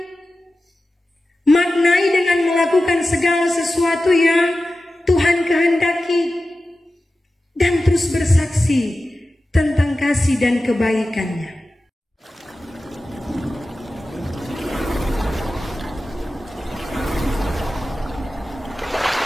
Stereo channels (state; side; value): normal; both; correlation 0.94